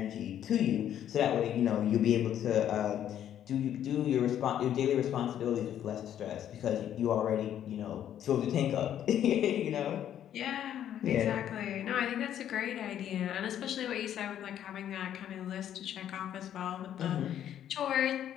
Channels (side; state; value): right; quieter; 10.5 dB